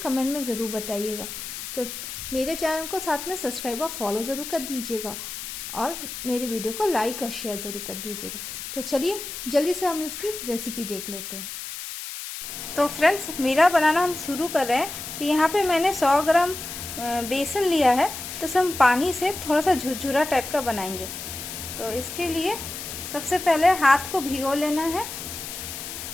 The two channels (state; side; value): noise; left; hiss, 8 dB below the sound